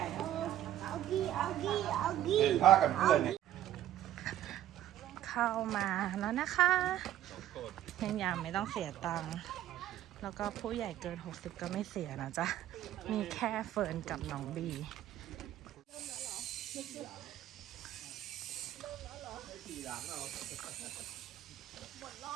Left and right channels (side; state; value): left; quieter; 12.5 dB